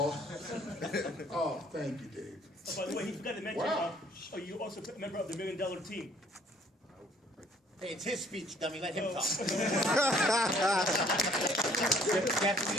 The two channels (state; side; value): normal; both; correlation 0.60